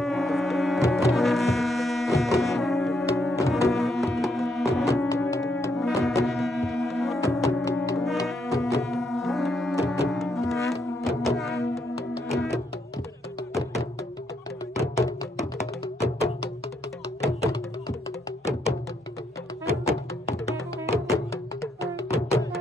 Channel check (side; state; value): both; normal; correlation 0.77